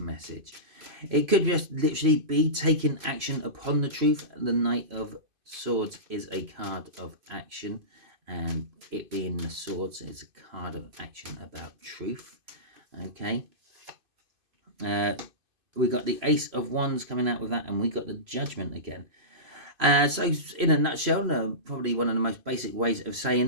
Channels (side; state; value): left; late; 2.5 ms